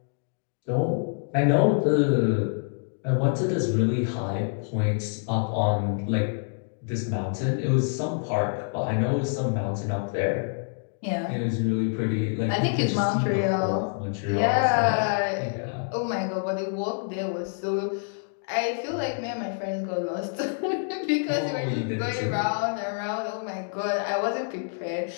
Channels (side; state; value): right; silent; digital silence